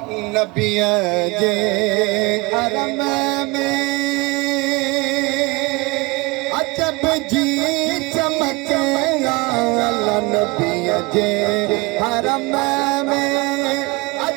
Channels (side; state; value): left; quieter; 24.8 dB